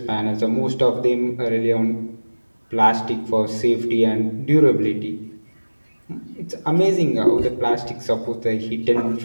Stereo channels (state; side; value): inverted; both; correlation -1.00